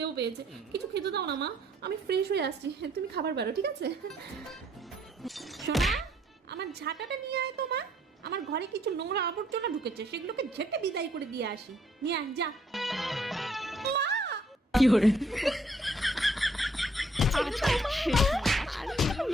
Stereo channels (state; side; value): normal; both; correlation 0.65